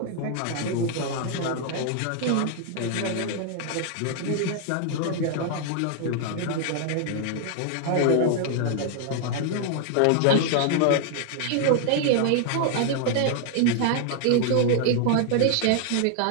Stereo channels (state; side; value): different; both; correlation 0.00